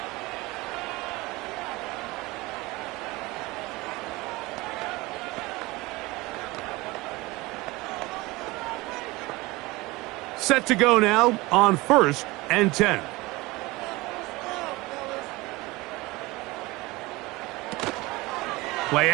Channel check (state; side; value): quieter; left; 21.7 dB